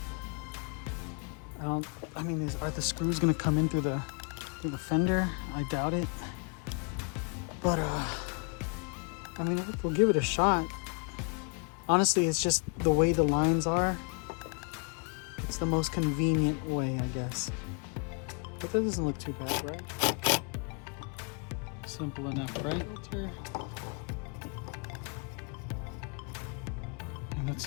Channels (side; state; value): right; quieter; 38.8 dB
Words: I mean, are the screws gonna come in through the fender? I doubt it. But I mean, we'll give it a shot. Honestly, it's just the way the lines are. It's the most convenient way, I guess. But that doesn't look too bad, right? Simple enough, right? And